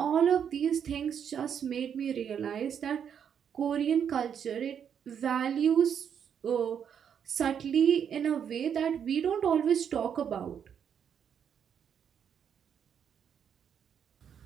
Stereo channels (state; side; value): quieter; left; 8.1 dB